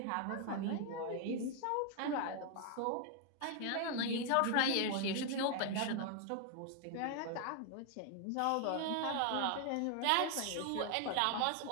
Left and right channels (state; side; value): different; both; correlation 0.00